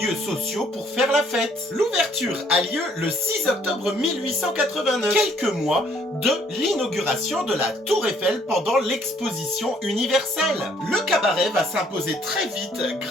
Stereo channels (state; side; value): normal; both; correlation 0.64